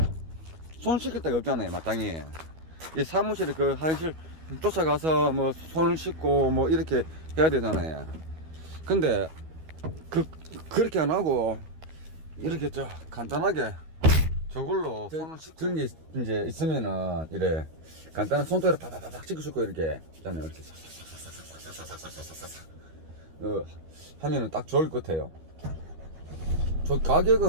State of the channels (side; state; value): left; late; 12 ms